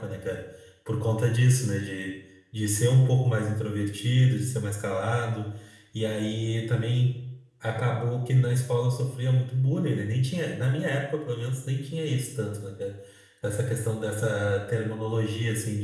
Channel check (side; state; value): both; identical; correlation 1.00